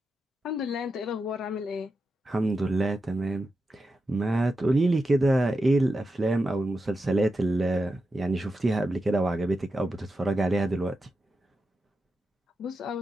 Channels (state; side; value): normal; both; correlation 0.88